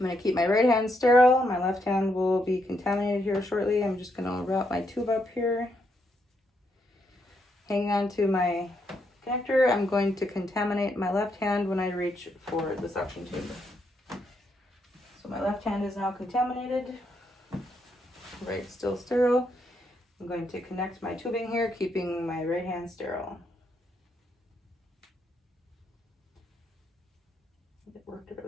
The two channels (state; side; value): normal; both; correlation 0.78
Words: to keep my right hand sterile. My left hand will be contaminated here shortly. I'm just going to route my tube up here. Hanging on to my connector, I'm going to contaminate my left hand when I reach for the suction tube. So my left hand is now contaminated. Right, still sterile. I'm going to connect my tubing here, keeping my right hand sterile. It worked